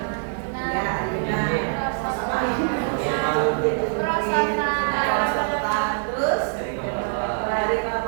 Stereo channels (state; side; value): silent; left; 56 dB below the other